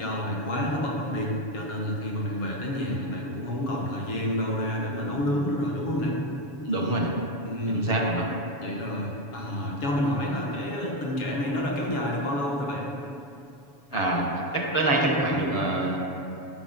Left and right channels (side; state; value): right; late; 7.1 ms